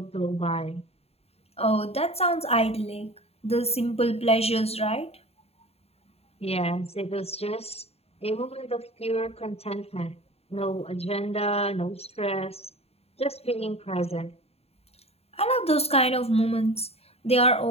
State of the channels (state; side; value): late; right; 0.29 ms